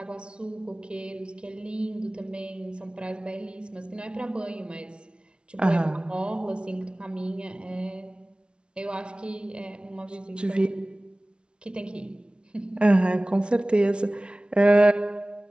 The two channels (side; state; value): left; late; 0.057 ms